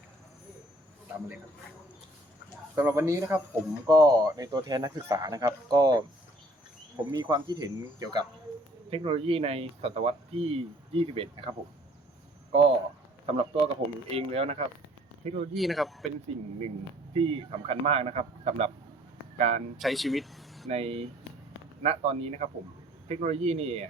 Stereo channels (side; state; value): both; normal; correlation 0.57